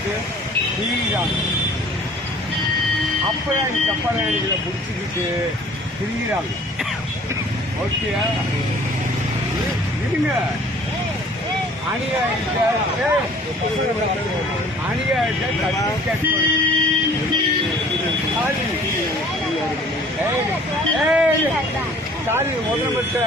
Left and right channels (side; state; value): both; normal; correlation 0.52